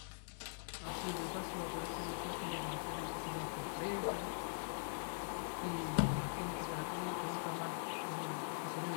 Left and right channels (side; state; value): right; silent; digital silence